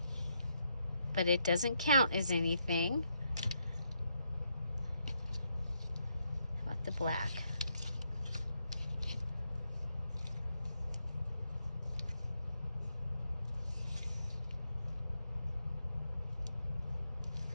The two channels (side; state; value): both; inverted; correlation -0.79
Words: but it doesn't count as anything. How about the black?